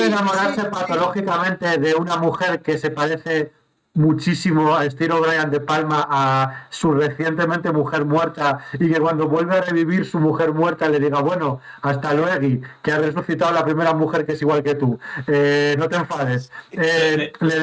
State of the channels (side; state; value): both; identical; correlation 1.00